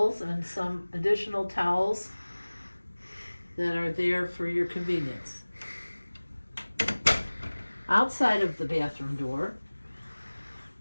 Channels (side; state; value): both; inverted; correlation -1.00